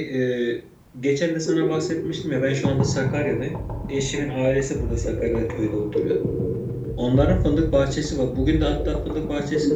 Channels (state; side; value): identical; both; correlation 1.00